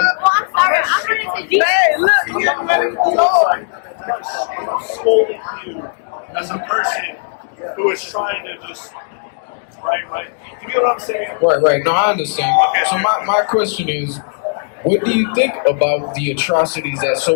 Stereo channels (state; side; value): silent; right; digital silence